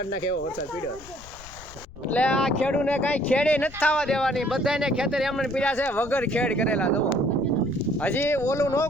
નાખે એવો વરસાદ પીડ્યો. એટલે આ ખેડૂને કાંઈ ખેડે નથી થવા દેવાની. બધાને ખેતર એમને પીડ્યા છે વગર ખેડ કરેલા. જુઓ હજી ઓલું ન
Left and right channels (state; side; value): noise; left; rumble, 19 dB below the sound